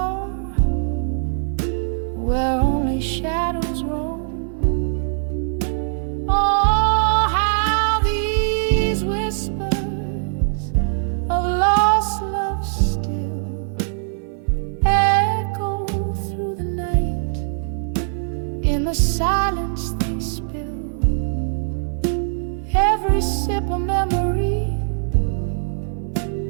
where only shadows roam. Oh, how these whispers of lost love still echo through the night. In the silence they spill every sip of memory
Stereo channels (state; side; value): silent; left; digital silence